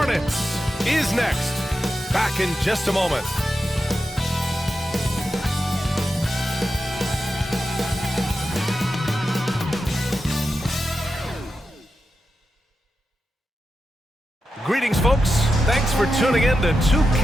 is next. Back in just a moment. Greetings, folks. Thanks for tuning in to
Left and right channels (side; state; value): both; normal; correlation 0.90